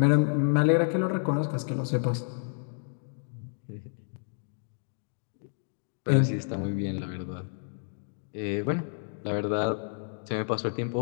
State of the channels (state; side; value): silent; right; digital silence